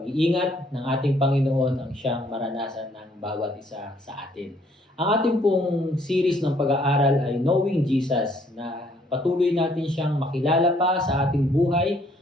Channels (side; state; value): both; normal; correlation 0.65